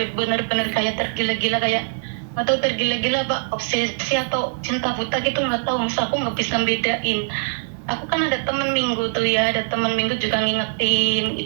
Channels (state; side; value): silent; left; 61 dB below the other